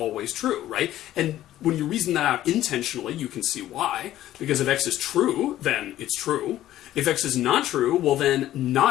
true, right? And when you reason that out intentionally, you can see why. Because if X is true, then it's true. If X is not true, well then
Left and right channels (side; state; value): right; quieter; 13.5 dB